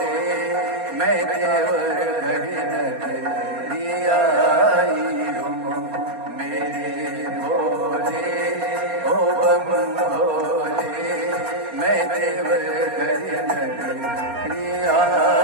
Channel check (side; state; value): left; late; 4.3 ms